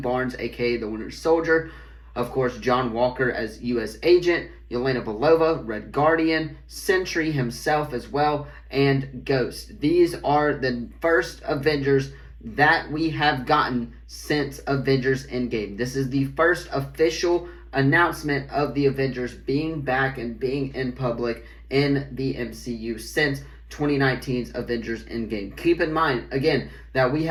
aka the Winter Soldier, of course, John Walker as U.S. Agent, Yelena Belova, Red Guardian, Sentry himself as well, and Ghost. These are the first Avengers that we have gotten since Avengers Endgame. This is the first official announcement of the Avengers being back and being in public in the MCU since 2019's Avengers Endgame. Keep in mind, again, that we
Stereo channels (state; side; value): identical; both; correlation 1.00